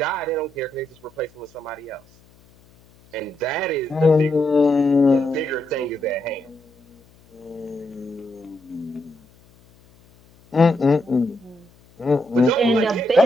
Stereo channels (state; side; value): noise; left; hum, 29 dB below the sound